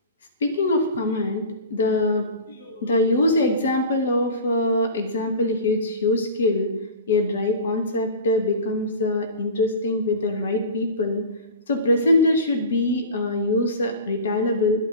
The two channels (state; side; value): inverted; both; correlation -0.34